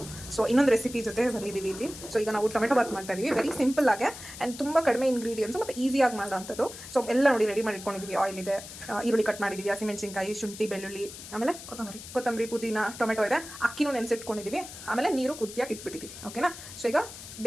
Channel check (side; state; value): left; noise; hiss, 13 dB below the sound